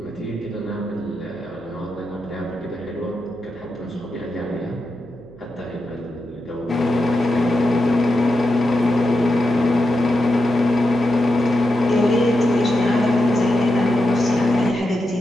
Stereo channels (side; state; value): right; noise; hum, 24 dB below the sound